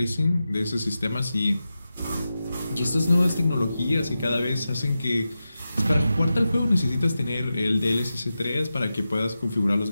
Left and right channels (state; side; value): inverted; both; correlation -0.92